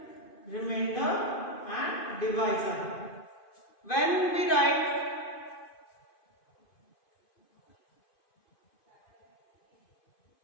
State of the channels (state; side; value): late; right; 2.5 ms